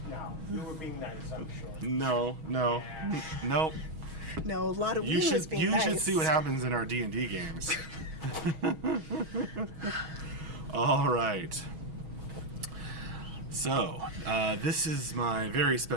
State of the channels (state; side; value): late; left; 6.2 ms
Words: were being nice, I'm sure. No. Nope. No, a lot of You Wii was should being nice. see what happens in our D&D games. All right. So, this is my very